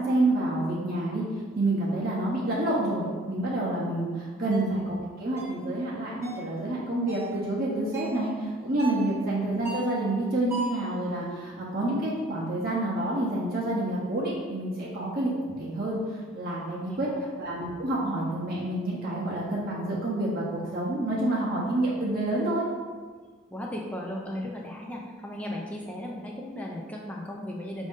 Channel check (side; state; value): both; normal; correlation 0.55